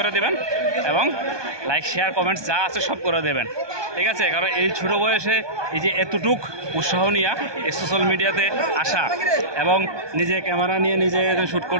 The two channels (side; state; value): left; late; 1.2 ms